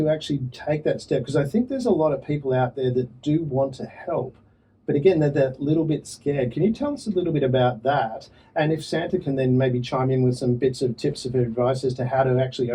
actually take that step? Because I think there's a lot of people out there that do want to help, but again, they're that little bit scared. Can you tell us a little bit about that? And if Santa can then maybe chime in with some bits of tips of advice as to how to actually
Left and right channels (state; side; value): identical; both; correlation 1.00